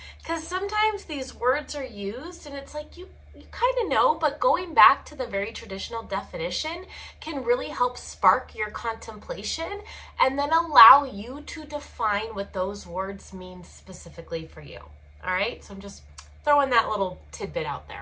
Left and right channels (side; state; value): both; identical; correlation 1.00